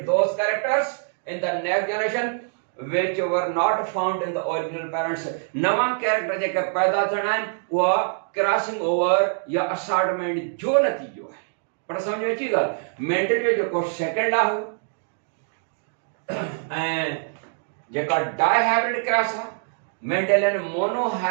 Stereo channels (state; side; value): silent; left; digital silence